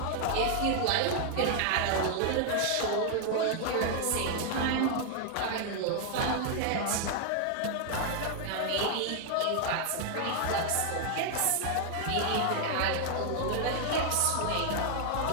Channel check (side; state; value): both; different; correlation 0.00